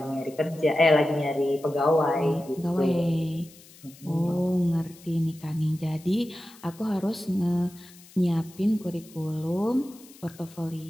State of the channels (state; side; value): noise; left; hiss, 23 dB below the sound